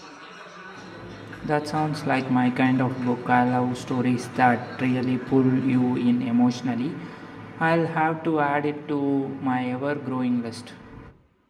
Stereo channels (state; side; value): identical; both; correlation 1.00